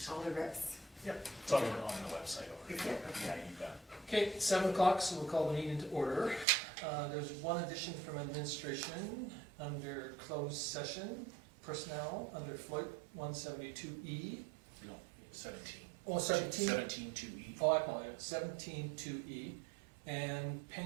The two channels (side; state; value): left; drops out; at 6.5 s